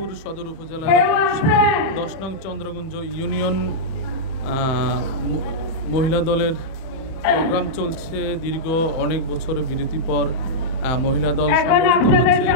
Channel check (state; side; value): late; right; 31 ms